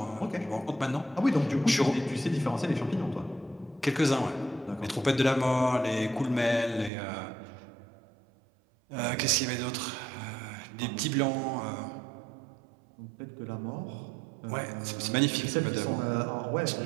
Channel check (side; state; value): left; drops out; at 6.9 s